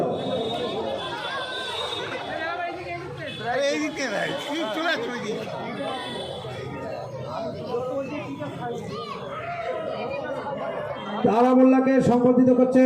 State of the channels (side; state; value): both; identical; correlation 1.00